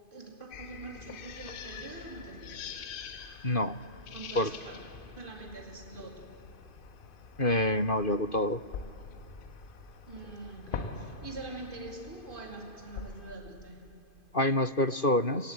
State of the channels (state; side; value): late; right; 2.5 ms